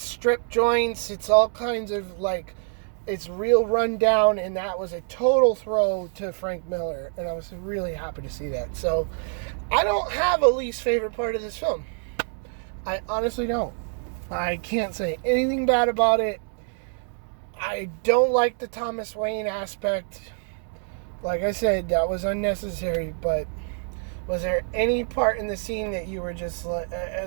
strip joints. It's all kinds of like, it's real run down, and that was a total throw to Frank Miller, and I was really happy to see that. So I don't have a least favorite part of this film. I honestly don't. I can't say anything bad about it. I don't like the Thomas Wayne aspect. Like I said, that was unnecessary, but was there any part in the scene that you were just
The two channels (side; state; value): left; silent; 56 dB below the other